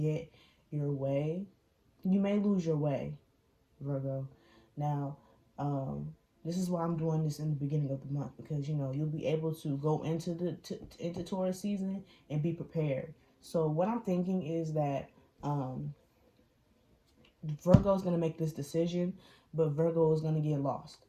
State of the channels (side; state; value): both; identical; correlation 1.00